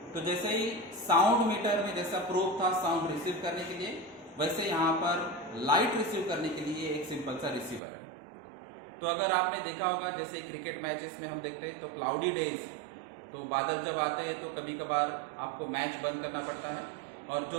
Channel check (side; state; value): left; drops out; at 7.8 s